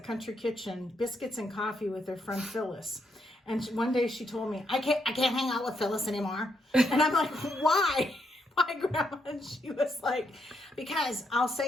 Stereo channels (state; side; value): normal; both; correlation 0.78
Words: Country Kitchen, Biscuits and Coffee with her friend Phyllis. And one day she told me, I can't hang out with Phyllis anymore. And I'm like, why? Why, Grandma? And she was like, because I'll